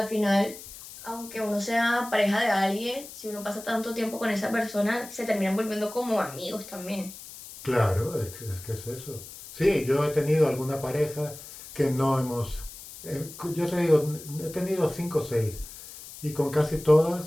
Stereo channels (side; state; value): left; noise; hiss, 15 dB below the sound